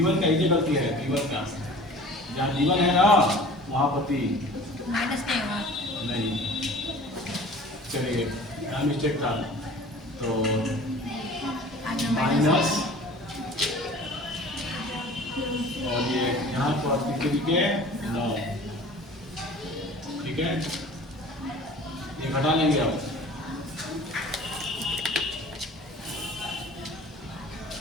का ये गलती है, b1 का जहाँ b1 है ना वहाँ पर 3 नहीं। चलिए क्या मिस्टेक था तो माइनस और ये यहाँ पर के 9। ठीक है, ये घटा लेंगे अब।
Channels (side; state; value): both; normal; correlation 0.44